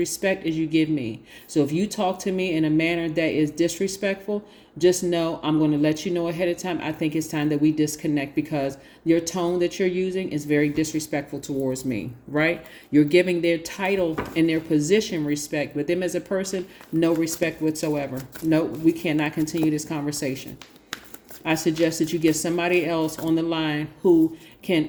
as you give me. So if you talk to me in a manner that is disrespectful, just know I'm going to let you know ahead of time. I think it's time that we disconnect, because your tone that you're using is very disrespectful towards me, right? You're giving their title and their position respect, but them as a person, no respect whatsoever. No, we cannot continue this conversation. I suggest that you get somebody else on the line who can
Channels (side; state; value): both; identical; correlation 1.00